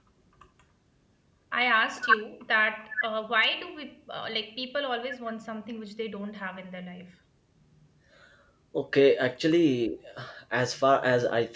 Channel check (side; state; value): both; identical; correlation 1.00